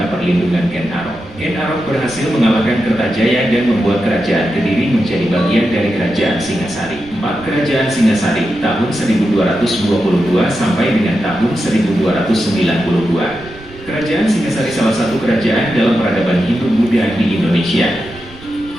perlindungan Ken Arok. Ken Arok berhasil mengalahkan Kertajaya dan membuat kerajaan Kediri menjadi bagian dari kerajaan Singasari. 4. Kerajaan Singasari, tahun 1222 sampai dengan tahun 1292. Kerajaan Singasari salah satu kerajaan dalam peradaban Hindu-Buddha di Indonesia.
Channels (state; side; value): noise; right; rumble, 19 dB below the sound